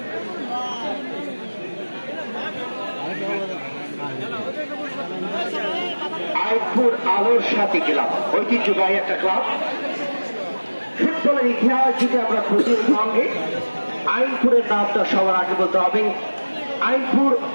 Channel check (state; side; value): inverted; both; correlation -1.00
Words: আইপুর আলোসাদী ক্লাব ঐতিহ্যবাহী একটা ক্লাব। ফুটবলের ইতিহাস যদি আমরা খুঁজির সঙ্গে আইনপুরের নামটা সবার আগে বলতে হবে। আইনপুর